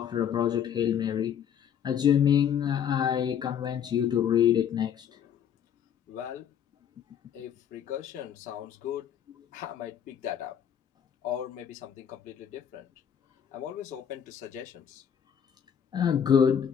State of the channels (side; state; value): right; quieter; 8.7 dB